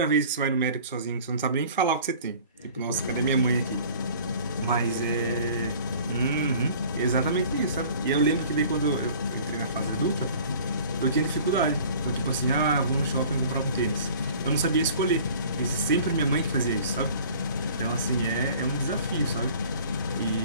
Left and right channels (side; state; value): both; inverted; correlation -0.47